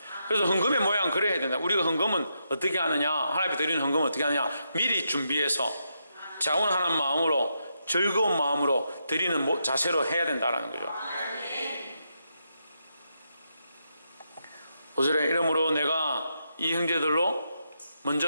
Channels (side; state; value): both; inverted; correlation -0.82